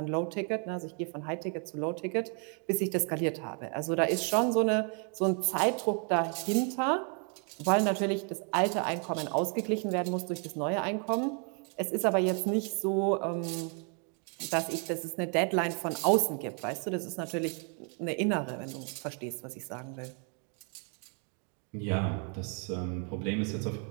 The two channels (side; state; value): left; quieter; 39.5 dB